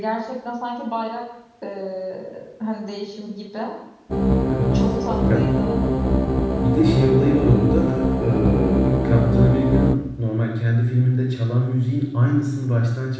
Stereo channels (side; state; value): both; identical; correlation 1.00